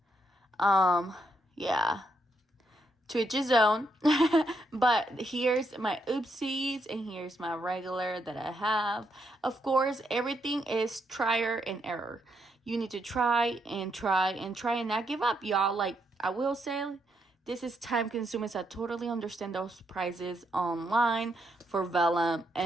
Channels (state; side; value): normal; both; correlation 0.78